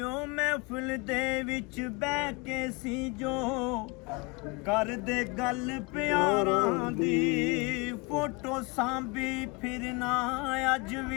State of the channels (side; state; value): right; quieter; 28.1 dB